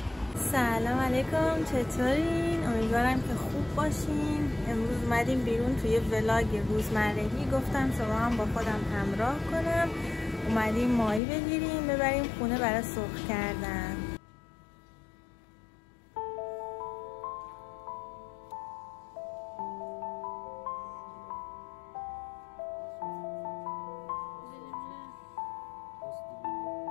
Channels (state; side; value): drops out; right; at 11.2 s